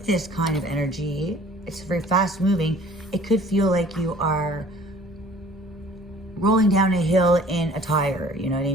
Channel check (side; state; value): both; normal; correlation 0.51